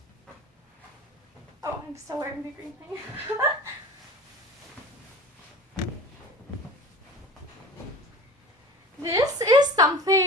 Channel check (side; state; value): both; normal; correlation 0.37